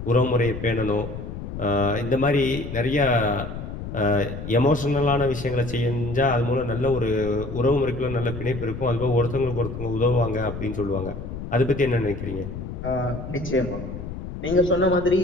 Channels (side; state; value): left; noise; rumble, 8 dB below the sound